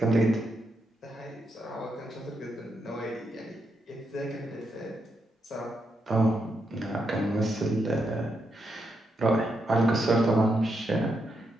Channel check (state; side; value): normal; both; correlation 0.82